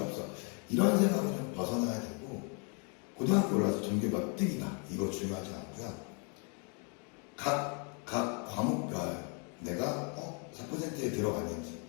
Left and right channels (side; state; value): right; quieter; 37.5 dB